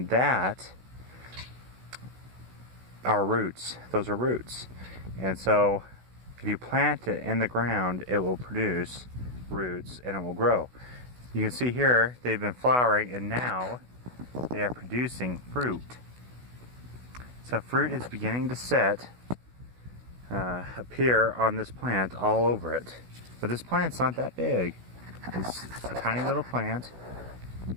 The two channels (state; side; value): late; left; 16 ms